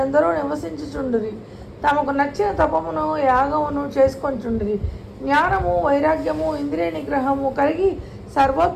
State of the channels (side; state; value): both; identical; correlation 1.00